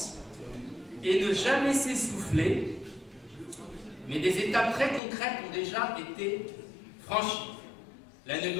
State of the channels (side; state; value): right; drops out; at 5.0 s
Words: et ne jamais s'essouffler, mais des étapes très concrètes ont déjà été franchies. La